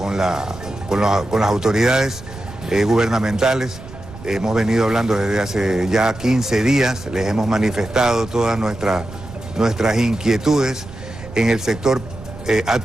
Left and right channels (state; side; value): noise; right; rumble, 15 dB below the sound